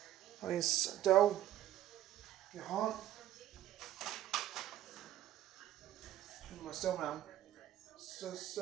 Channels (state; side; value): quieter; left; 12.9 dB